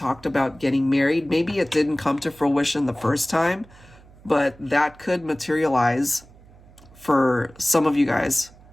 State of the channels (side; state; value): right; noise; hum, 24 dB below the sound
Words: about getting married, maybe it didn't come to fruition the first time, but that could materialize for some of you guys